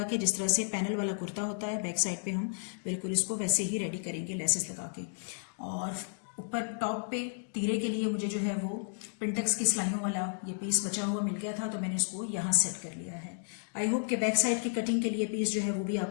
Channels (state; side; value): silent; right; digital silence